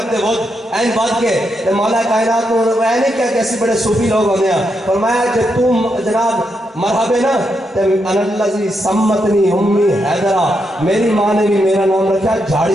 ود این بات کے تو مولا کائنات کو وہ نہیں کیا کہ ایسی بڑے صوفی لوگ ہونے ہیں، فرمایا جب تم جناب مرحبا نا تو انا الذی سمتنی امی حیدرہ، میری ماں نے بھی میرا نام رکھا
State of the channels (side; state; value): both; normal; correlation 0.82